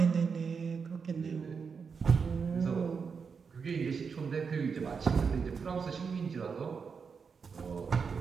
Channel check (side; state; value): left; quieter; 5.7 dB